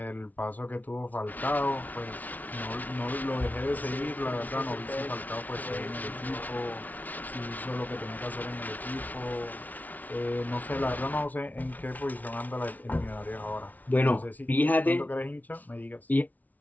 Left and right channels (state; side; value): late; right; 0.077 ms